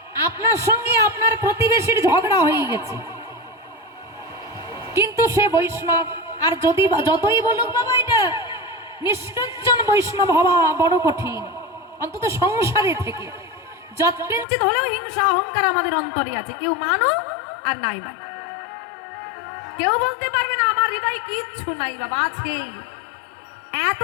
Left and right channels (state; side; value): drops out; right; at 14.5 s